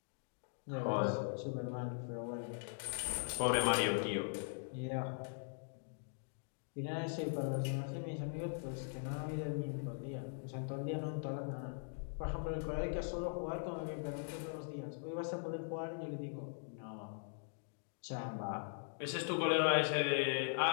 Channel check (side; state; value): right; silent; digital silence